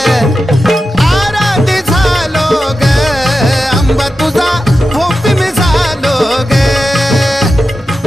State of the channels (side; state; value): both; normal; correlation 0.91